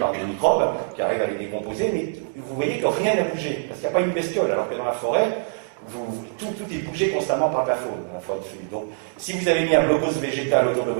microbes qui arrivent à les décomposer, mais vous voyez que rien n'a bougé, parce qu'il n'y a pas une bestiole, alors que dans la forêt, tout est bougé constamment par la faune. Donc, si vous avez mis un blocos végétal autour de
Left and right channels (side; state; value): left; silent; digital silence